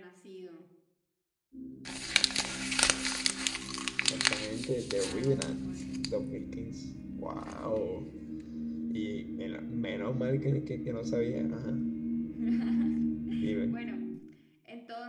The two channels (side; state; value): both; identical; correlation 1.00